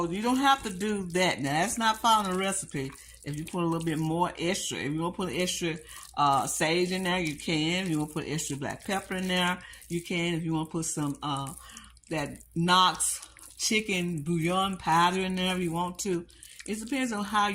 you don't have to do that. Now, that's not following the recipe. If you put a little bit more extra, if you want to put extra sage in there, you can. If you want to put extra black pepper in there, you can. If you want to put some that Knox chicken bouillon powder in there, if you want to. It depends on how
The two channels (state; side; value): identical; both; correlation 1.00